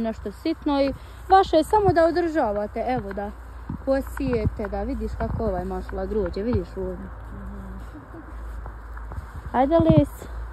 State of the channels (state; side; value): identical; both; correlation 1.00